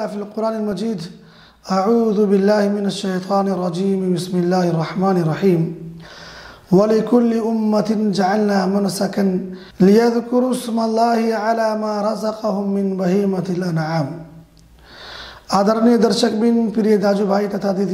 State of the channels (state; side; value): identical; both; correlation 1.00